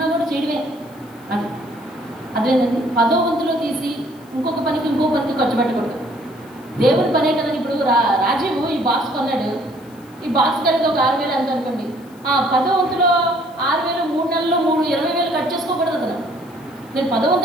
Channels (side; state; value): left; noise; hiss, 28 dB below the sound